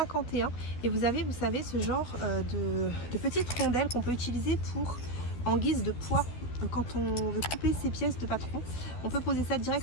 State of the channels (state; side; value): late; right; 12 ms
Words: et vous avez, vous savez, ce genre de petites rondelles qu'on peut utiliser en guise de poids. Quand on veut couper ces pièces de patron, on peut poser ça